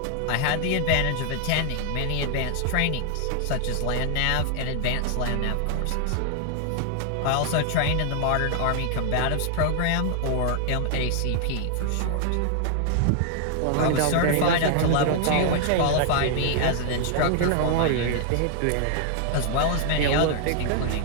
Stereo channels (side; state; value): both; different; correlation 0.00